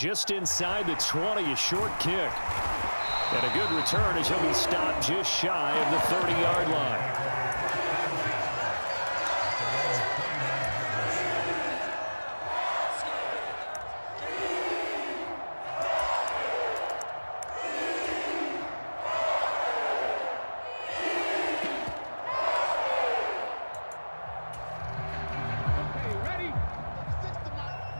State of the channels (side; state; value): both; inverted; correlation -1.00